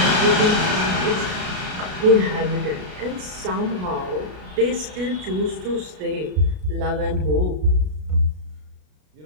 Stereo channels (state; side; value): late; left; 33 ms